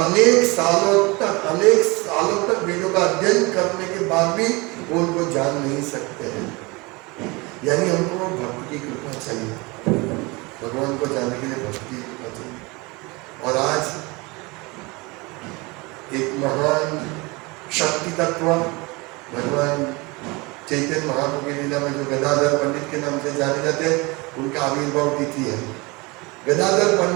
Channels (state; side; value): quieter; left; 25.6 dB